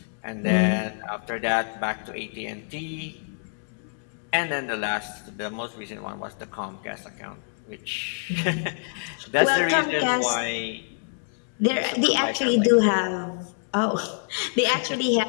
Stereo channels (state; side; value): silent; right; digital silence